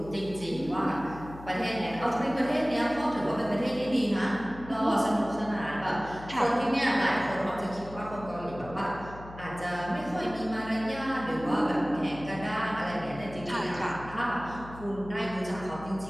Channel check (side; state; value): left; noise; hum, 15 dB below the sound